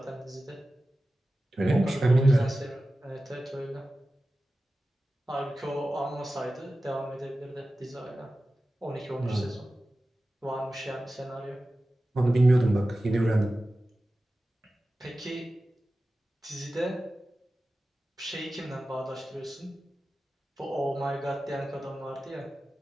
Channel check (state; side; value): normal; both; correlation 0.95